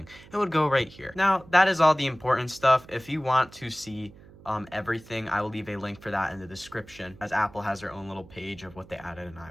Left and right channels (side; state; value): right; noise; hum, 21 dB below the sound